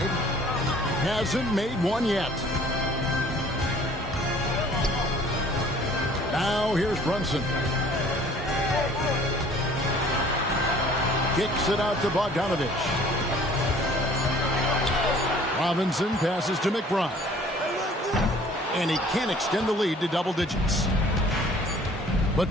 Hasn't made one yet. Now here's Brunson. Kicks it out to Bogdanovich. Robinson passes to McBride. And he can't extend the lead to double digits.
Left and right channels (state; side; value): normal; both; correlation 0.53